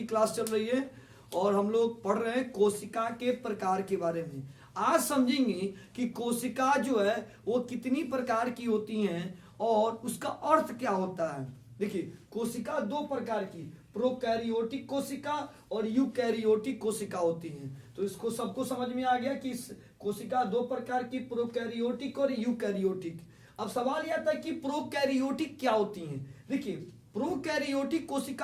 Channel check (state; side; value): identical; both; correlation 1.00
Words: क्लास चल रही है और हम लोग पढ़ रहे हैं कोशिका के प्रकार के बारे में। आज समझेंगे कि कोशिका जो है वो कितनी प्रकार की होती हैं और उसका अर्थ क्या होता है। देखिए, कोशिका दो प्रकार की, प्रोकैरियोटिक कोशिका और यूकैरियोटिक कोशिका होती हैं। तो इसको सबको समझ में आ गया कि कोशिका दो प्रकार की, प्रोकैरियोटिक और यूकैरियोटिक। अब सवाल यह था कि प्रोकैरियोटिक क्या होती हैं। देखिए, प्रोकैरियोटिक